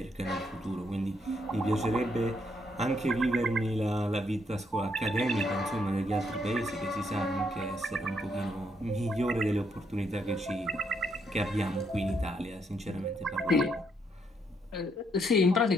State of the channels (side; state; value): both; normal; correlation 0.74